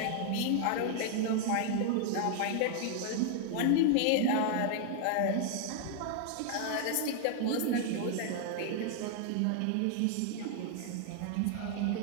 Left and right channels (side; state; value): both; different; correlation 0.00